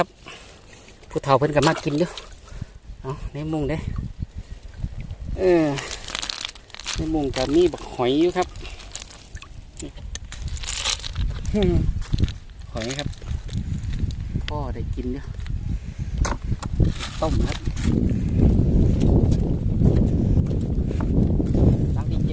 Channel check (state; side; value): identical; both; correlation 1.00